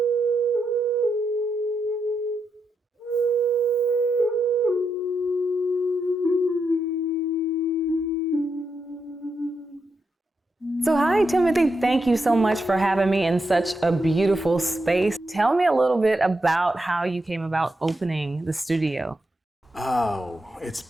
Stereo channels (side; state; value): both; normal; correlation 0.84